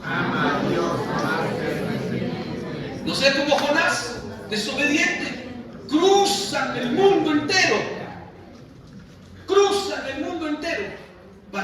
Ama a Dios más que el resentimiento. No sea como Jonás, desobediente. Cruzan el mundo entero. Cruzan el mundo entero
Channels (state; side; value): identical; both; correlation 1.00